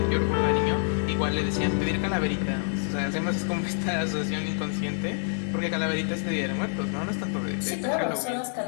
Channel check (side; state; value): right; silent; 60 dB below the other